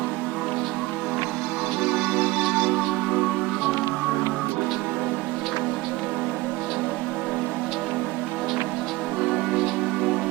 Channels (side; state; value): left; quieter; 20.5 dB